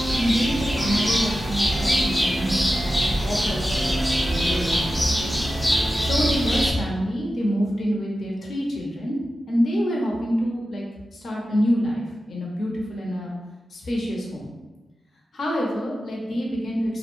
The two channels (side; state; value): both; normal; correlation 0.93